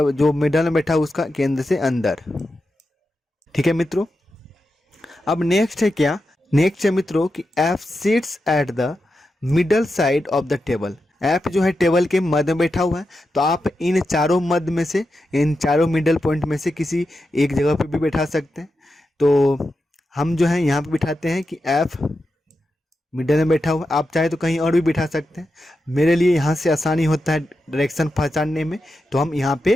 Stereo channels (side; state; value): both; normal; correlation 0.89